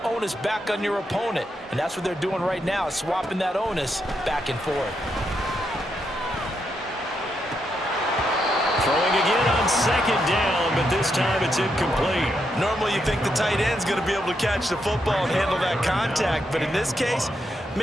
onus back on your opponent. And that's what they're doing right now, swapping that onus back and forth. Throwing again on 2nd down, but this time it's incomplete. Normally you think the tight end's going to be able to catch the football and handle that contact, but in this case,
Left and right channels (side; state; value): both; normal; correlation 0.81